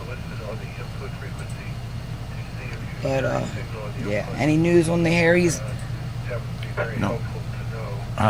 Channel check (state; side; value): identical; both; correlation 1.00